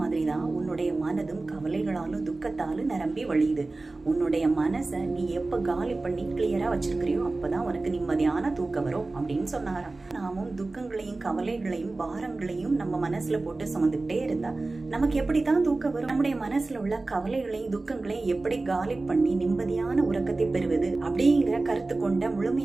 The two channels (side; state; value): left; quieter; 3.3 dB